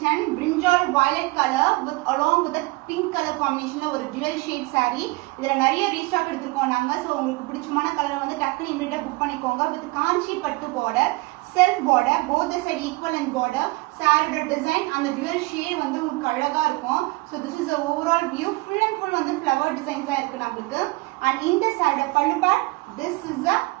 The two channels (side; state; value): left; quieter; 23.7 dB